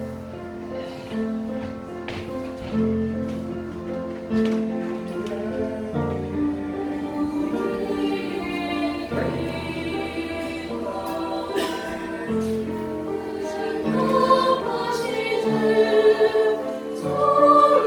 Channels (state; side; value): identical; both; correlation 1.00